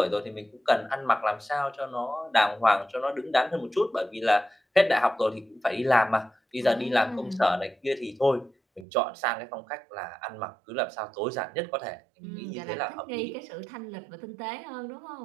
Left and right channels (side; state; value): left; drops out; at 8.8 s